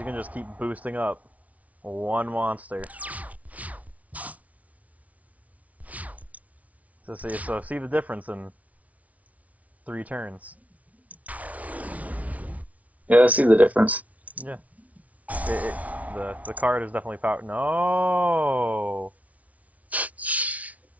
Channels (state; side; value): late; left; 0.069 ms